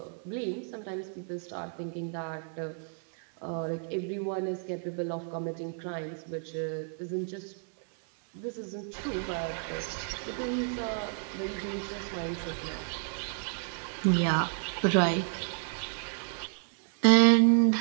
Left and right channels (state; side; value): silent; left; 57 dB below the other